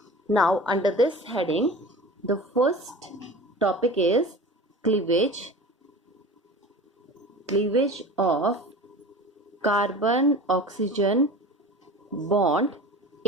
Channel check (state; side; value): normal; both; correlation 0.36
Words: Now, under this heading, the first topic is cleavage of carbon oxygen bond